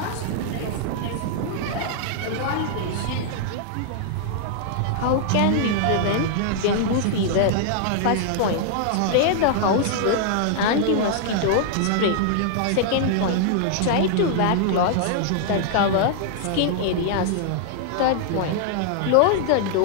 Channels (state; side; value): different; both; correlation -0.01